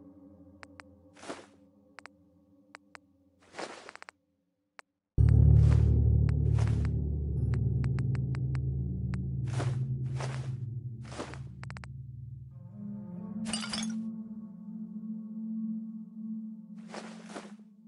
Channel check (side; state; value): both; identical; correlation 1.00